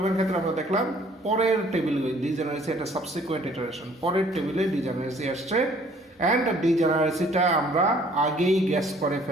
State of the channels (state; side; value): normal; both; correlation 0.58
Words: ক্ষেত্রে আমরা দেখলাম পরের টেবিল ডিজেনারেসি একটা সাবসিকুয়েন্ট ইটারেশন, পরের টেবিলে ডিজেনারেসি আসছে। অ্যান্ড ডিজেনারেসিটা আমরা আগেই গ্যাস করে